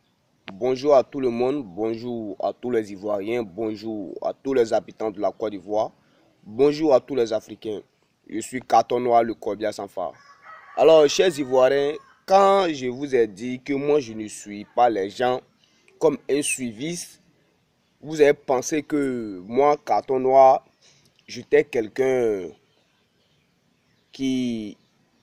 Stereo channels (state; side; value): identical; both; correlation 1.00